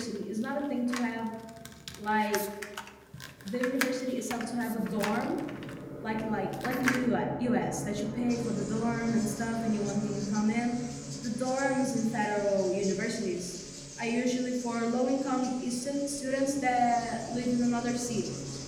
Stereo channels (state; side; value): identical; both; correlation 1.00